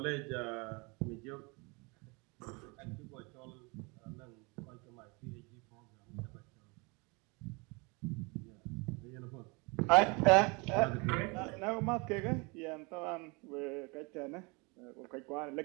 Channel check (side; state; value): left; quieter; 28.9 dB